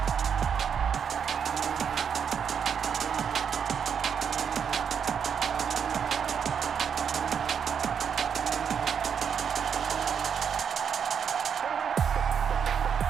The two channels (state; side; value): quieter; left; 7.4 dB